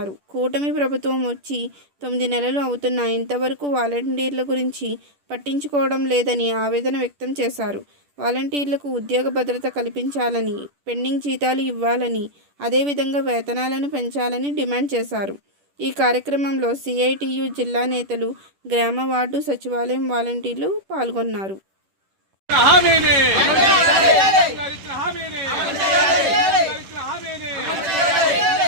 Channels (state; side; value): late; left; 10 ms